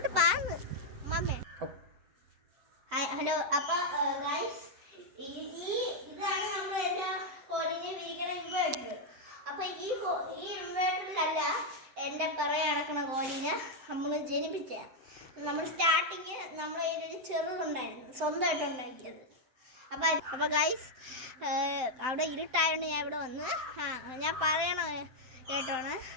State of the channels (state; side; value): late; left; 7.8 ms